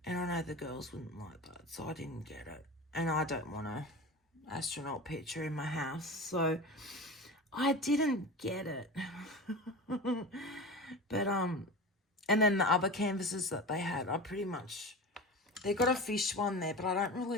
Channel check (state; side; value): normal; both; correlation 0.30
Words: And I know the girls wouldn't like that, so I didn't get it. And I don't want a astronaut picture in my house, so I didn't get it. But and then the other canvases that they had, I pretty much, they got a fish one there, but I don't